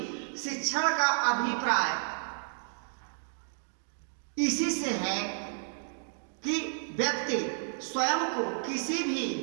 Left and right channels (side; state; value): left; silent; digital silence